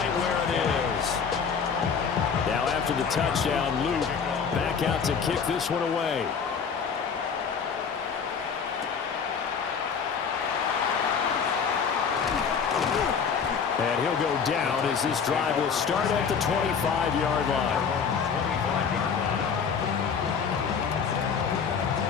where it is. Now after the touchdown, Luke back out to kick this one away. And he'll go down as this drive will start at the 25-yard line.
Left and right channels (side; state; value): right; quieter; 6.3 dB